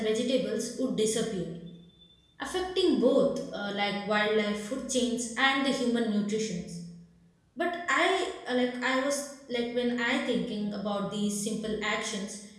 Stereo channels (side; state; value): both; identical; correlation 1.00